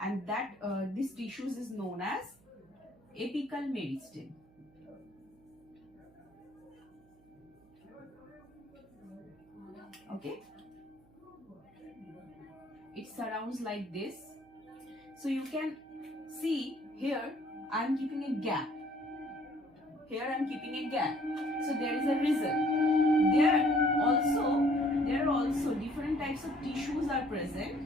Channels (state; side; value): noise; right; hum, 29 dB below the sound